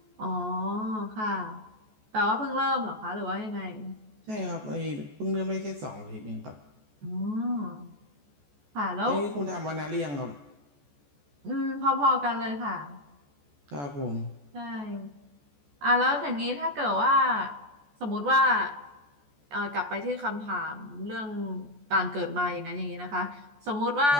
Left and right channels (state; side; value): late; left; 14 ms